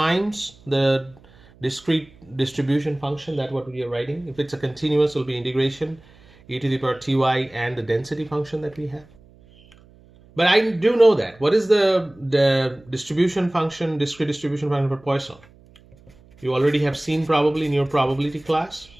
the discrete distribution function, that's what we are writing. If it's a continuous, it will be integration e to the power ty and the density function that we have. But I do know that. What is the distribution function, discrete distribution function for Poisson? You already have seen probably in your probability class.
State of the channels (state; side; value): noise; right; hum, 27 dB below the sound